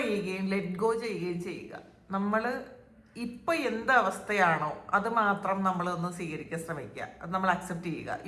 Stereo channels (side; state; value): both; identical; correlation 1.00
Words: ചെയ്യുകയും ലെറ്റ് ഗോ ചെയ്യുകയും ചെയ്യുക. നമ്മൾ ഇപ്പം എന്ത് അവസ്ഥയാണോ അത് മാത്രം നമ്മളൊന്ന് സ്വീകരിക്കാൻ ശ്രമിക്കുക. അത് നമ്മൾ അക്സെപ്റ്റ് ചെയ്യുക.